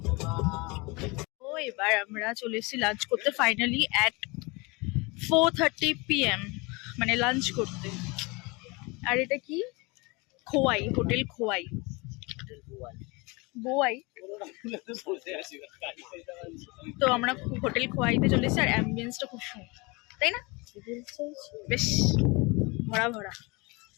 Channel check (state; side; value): quieter; right; 26.5 dB